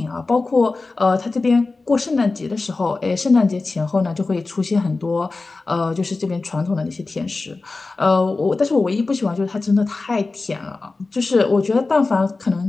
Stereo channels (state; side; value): quieter; right; 3.6 dB